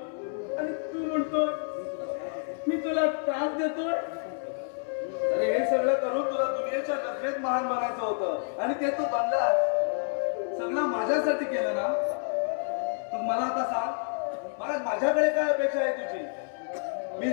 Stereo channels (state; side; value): silent; right; 59 dB below the other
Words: आणि तू म्हणतो मी तुला त्रास देतोय. अरे हे सगळं करून तुला दुनियेच्या नजरेत महान बनायचं होतं आणि ते तू बनलास. सगळं माझ्यासाठी केलं ना. तू मला आता सांग, माझ्याकडे काय अपेक्षा आहे तुझी? मी